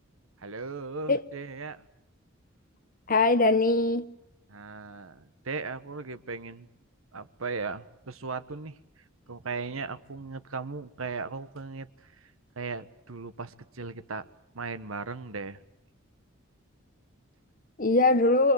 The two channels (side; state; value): both; normal; correlation -0.13